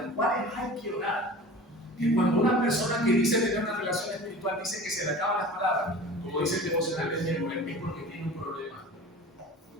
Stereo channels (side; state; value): both; normal; correlation 0.39